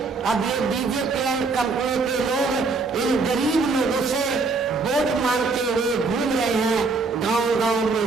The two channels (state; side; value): quieter; left; 4.0 dB